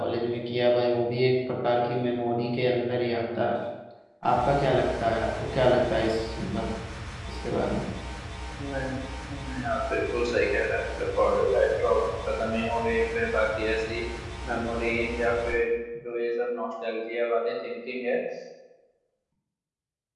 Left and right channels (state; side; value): identical; both; correlation 1.00